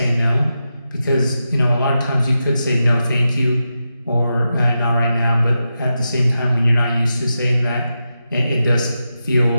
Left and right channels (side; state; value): both; inverted; correlation -0.89